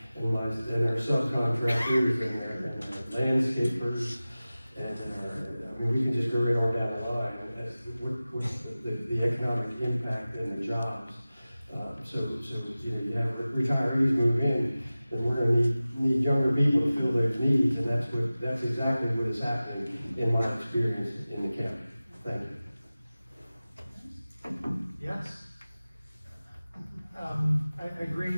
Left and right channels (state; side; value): inverted; both; correlation -0.97